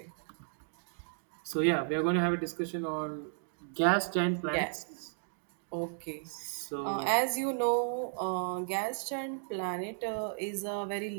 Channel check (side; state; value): left; silent; digital silence